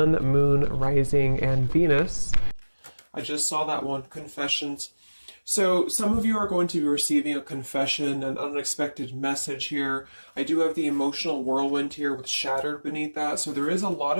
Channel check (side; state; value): both; inverted; correlation -1.00